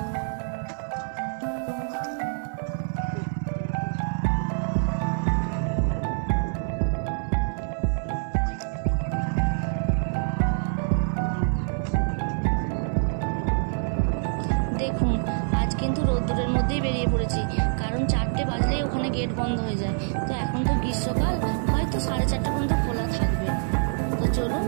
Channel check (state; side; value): silent; left; 61 dB below the other